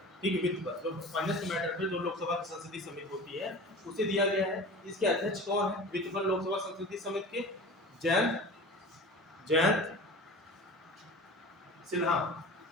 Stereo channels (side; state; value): both; normal; correlation 0.37